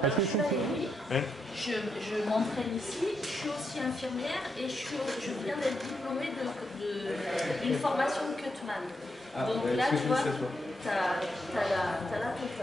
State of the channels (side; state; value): both; normal; correlation 0.82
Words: Je m'entraîne ici, je suis aussi infirmière et je viens d'être diplômée d'une formation Cutman. Donc là, tu vois, t'as la